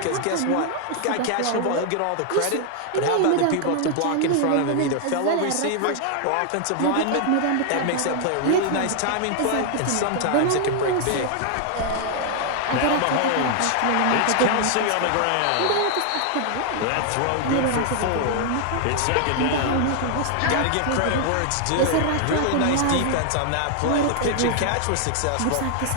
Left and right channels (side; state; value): both; different; correlation 0.00